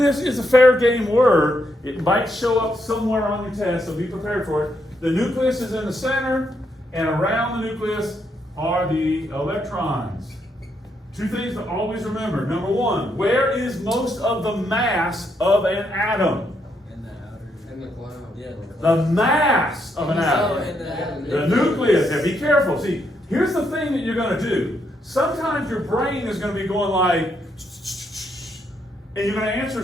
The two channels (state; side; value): normal; both; correlation 0.77